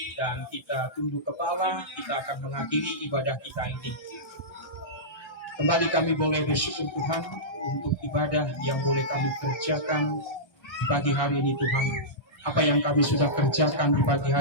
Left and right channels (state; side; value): late; right; 1.3 ms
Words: dan kita tunduk kepala. Kita akan mengakhiri ibadah kita ini. Kembali kami boleh bersyukur Tuhan untuk ibadah yang boleh kami kerjakan di pagi hari ini Tuhan. Apa yang kami sudah kerjakan di pagi